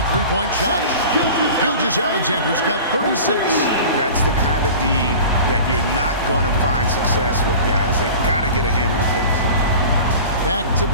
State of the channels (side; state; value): both; inverted; correlation -0.38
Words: three-point shot. Gilgeous-Alexander's got 36. That's the kind of D that you're not going to find success with, guys. They've got to get a hand in the face. Back to